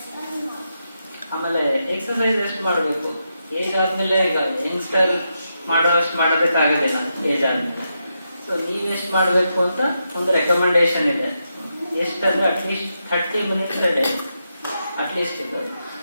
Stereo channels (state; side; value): inverted; both; correlation -0.85